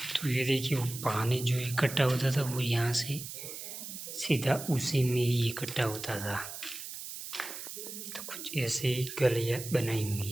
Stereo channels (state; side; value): noise; right; hiss, 9 dB below the sound